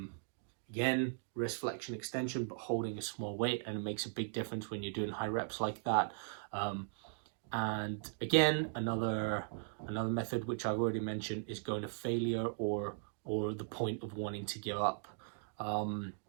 again, wrist flexion extension, but holding a small weight, and it makes a big difference when you're doing high reps like that. And again, another method which I've already mentioned is going to failure or the point of wanting to give up. And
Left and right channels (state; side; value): silent; left; digital silence